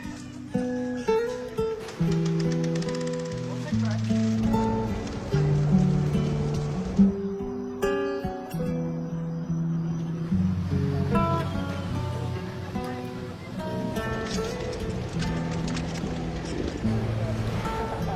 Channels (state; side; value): identical; both; correlation 1.00